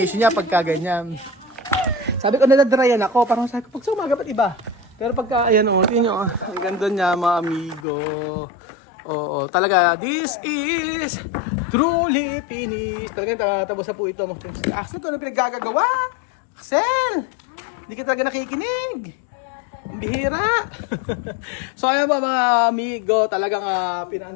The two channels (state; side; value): drops out; right; at 7.9 s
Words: niya pagka ganyan. Sabi ko nadadryan ako. Parang sabi ko, pag sa umaga ba't iba? Pero pagka, ayan o, tingin nyo, ang ganda niya mga amigo. Oo, talaga, this is truly finished. Talaga, tapos na po ito. Axel, ito na pinaggagawa. Axel, hindi ka talaga nakikinig. Ang bihira. So, ayan po mga amigo, talagang